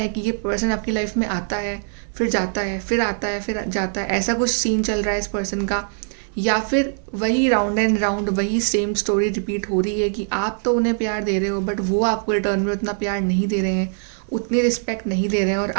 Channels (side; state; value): left; silent; 64 dB below the other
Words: कि ये पर्सन आपकी लाइफ में आता है, फिर जाता है, फिर आता है, फिर जाता है, ऐसा कुछ सीन चल रहा है इस पर्सन का। या फिर वही राउंड एंड राउंड वही सेम स्टोरी रिपीट हो रही है कि आप तो उन्हें प्यार दे रहे हो, बट वो आपको रिटर्न में उतना प्यार नहीं दे रहे हैं, उतनी रिस्पेक्ट नहीं दे रहे हैं, और